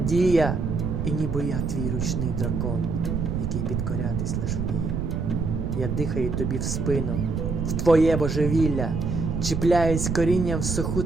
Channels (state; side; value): noise; right; rumble, 1 dB below the sound